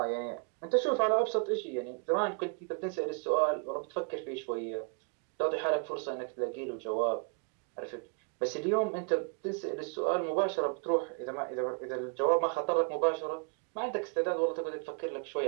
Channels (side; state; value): left; quieter; 39.4 dB